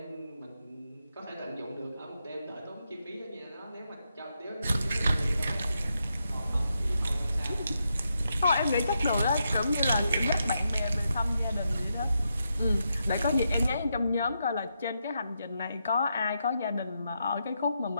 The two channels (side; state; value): both; inverted; correlation -0.83